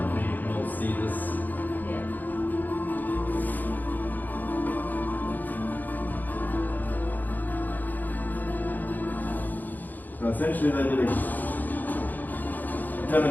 you can all see this. Yeah. So essentially they did a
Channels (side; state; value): right; late; 0.085 ms